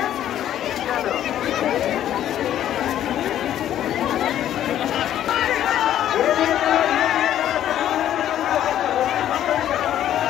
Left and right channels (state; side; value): quieter; right; 11.4 dB